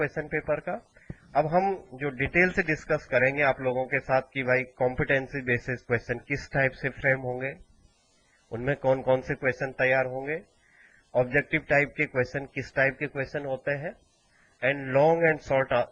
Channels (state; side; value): identical; both; correlation 1.00